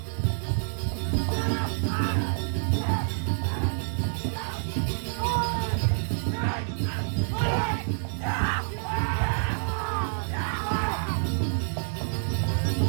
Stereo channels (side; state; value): left; silent; 59 dB below the other